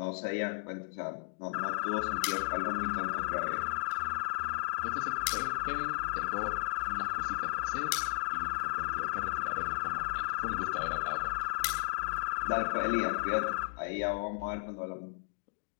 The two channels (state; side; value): silent; right; digital silence